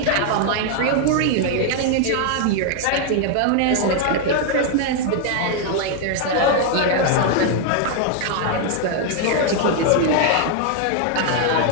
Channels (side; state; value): both; different; correlation 0.00